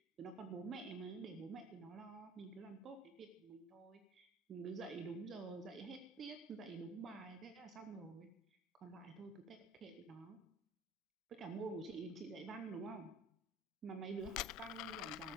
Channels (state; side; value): normal; both; correlation 0.47